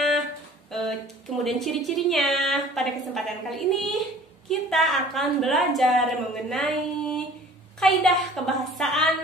kemudian ciri-cirinya. Pada kesempatan kali ini kita akan belajar mengenai kaidah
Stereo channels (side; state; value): both; normal; correlation 0.49